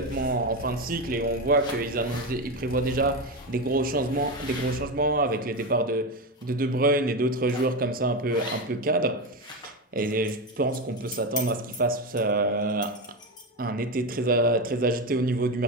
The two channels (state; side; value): normal; both; correlation 0.15